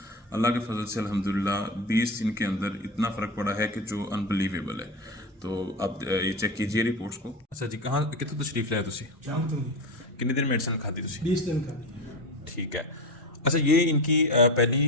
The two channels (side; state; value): both; normal; correlation 0.22